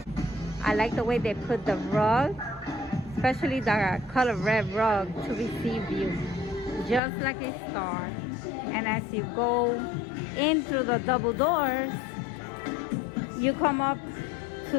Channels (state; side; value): drops out; right; at 7.0 s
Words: I like the way they put the rug, especially the color red rug, to receive you, just like a star. And as you go in through the double doors, you come up